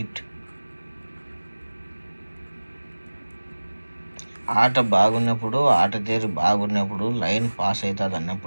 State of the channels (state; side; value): inverted; both; correlation -1.00